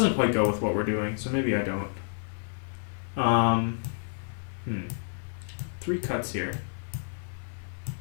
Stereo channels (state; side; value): silent; right; 58 dB below the other